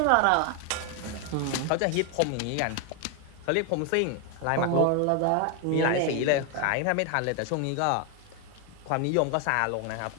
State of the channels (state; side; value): different; both; correlation 0.01